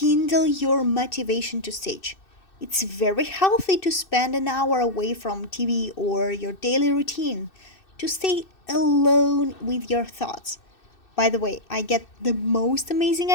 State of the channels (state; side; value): late; right; 2.6 ms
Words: your motivation to stitch. It's very healthy to spend an hour away from TV or your daily routine to stay alone with your thoughts. By the way, I get the most amazing